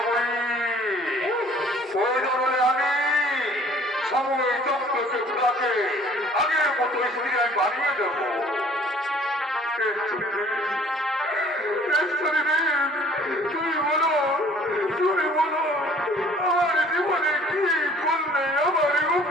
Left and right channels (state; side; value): normal; both; correlation 0.53